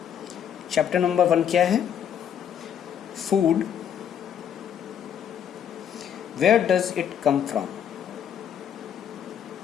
चैप्टर नंबर 1 क्या है? Food. Where does it come from?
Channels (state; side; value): quieter; right; 8.8 dB